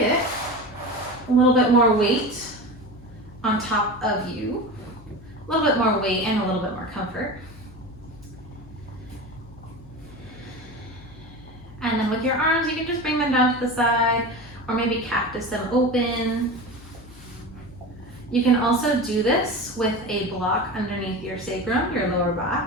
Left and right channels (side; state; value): left; noise; hum, 20 dB below the sound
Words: a little bit more weight on top of you. A little bit more weight and a little bit more comfort. And then with your arms, you can just bring them down to the side, or maybe cactus them open. You can also do this with a block underneath your sacrum, your lower